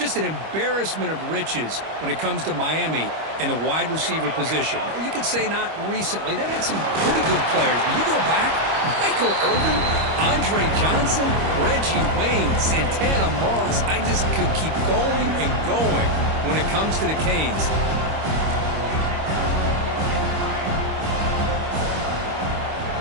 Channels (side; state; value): left; late; 25 ms